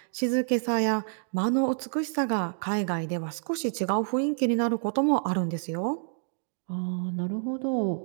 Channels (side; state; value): left; silent; digital silence